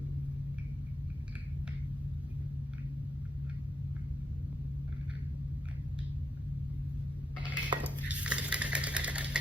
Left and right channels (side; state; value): both; normal; correlation 0.82